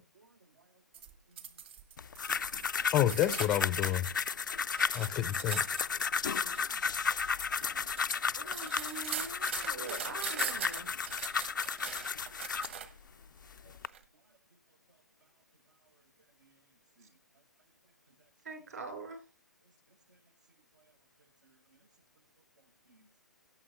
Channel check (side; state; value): right; quieter; 5.5 dB